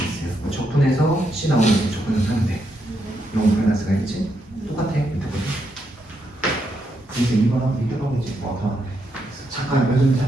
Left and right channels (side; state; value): both; normal; correlation 0.80